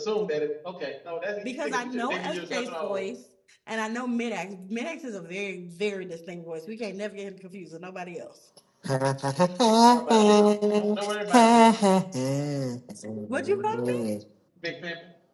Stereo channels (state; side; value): identical; both; correlation 1.00